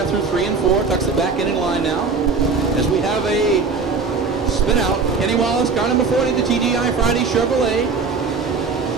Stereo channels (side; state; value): left; quieter; 4.6 dB